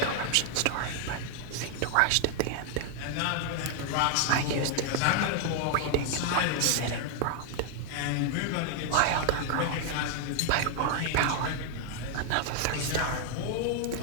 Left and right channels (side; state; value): both; different; correlation 0.00